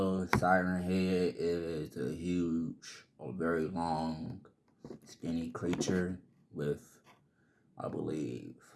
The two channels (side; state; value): both; identical; correlation 1.00